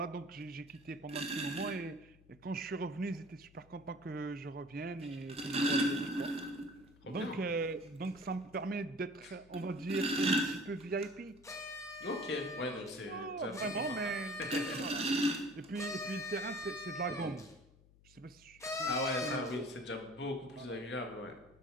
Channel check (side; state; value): left; noise; hum, 25 dB below the sound